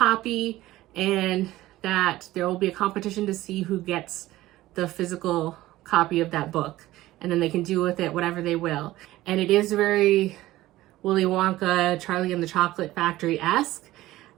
and that there will be a competition to see who gets the physical copy of that book, and then they can do with it whatever they will. And it is very Willy Wonka, Charlie and the Chocolate Factory-esque,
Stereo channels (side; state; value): left; quieter; 16.4 dB